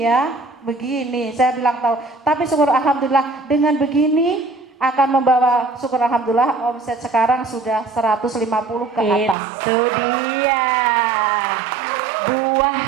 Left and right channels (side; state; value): left; drops out; at 9.3 s